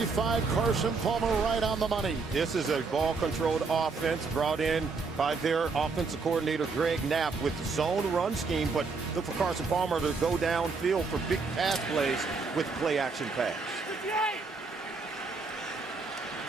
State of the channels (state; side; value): quieter; left; 4.4 dB